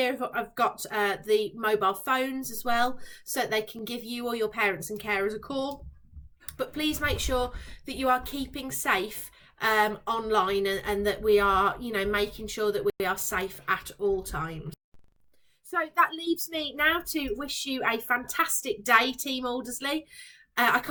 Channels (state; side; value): identical; both; correlation 1.00